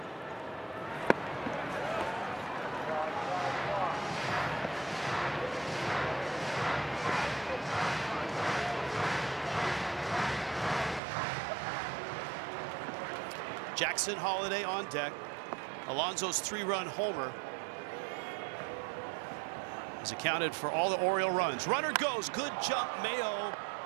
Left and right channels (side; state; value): left; drops out; at 11.0 s